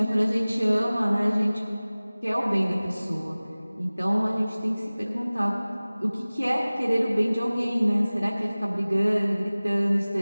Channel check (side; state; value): both; inverted; correlation -0.99